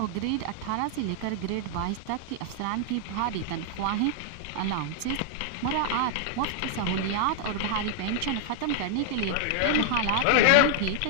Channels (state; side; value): different; both; correlation 0.00